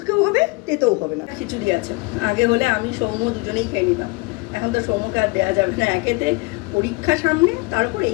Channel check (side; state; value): right; quieter; 25.2 dB